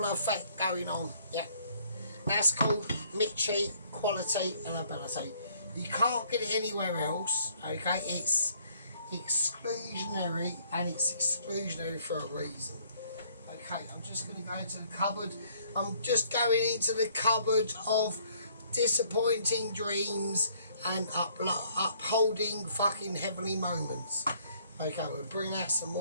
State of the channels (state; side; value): inverted; both; correlation -0.63